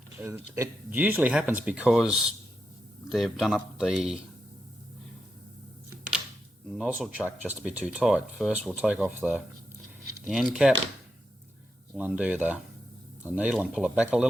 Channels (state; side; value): normal; both; correlation 0.86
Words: it usually happens because they've done up the nozzle chuck just a bit too tight. First we'll take off the end cap, we'll undo the needle and pull it back a